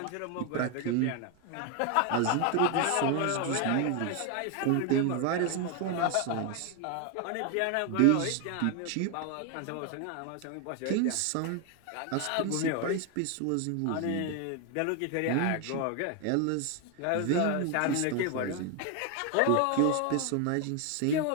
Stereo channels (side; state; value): both; different; correlation 0.01